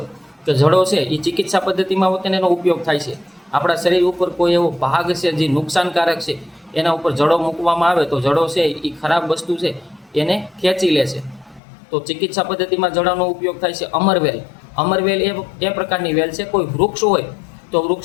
કે જડો છે એ ચિકિત્સા પદ્ધતિમાં તેને એનો ઉપયોગ થાય છે. આપણા શરીર ઉપર કોઈ એવો ભાગ છે જે નુકસાનકારક છે, એના ઉપર જડો મૂકવામાં આવે તો જડો છે એ ખરાબ વસ્તુ છે એને ખેંચી લે છે, તો ચિકિત્સા પદ્ધતિમાં જડાનો ઉપયોગ થાય છે. અમરવેલ એ પ્રકારની વેલ છે. કોઈ વૃક્ષ હોય તો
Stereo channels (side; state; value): right; drops out; at 11.6 s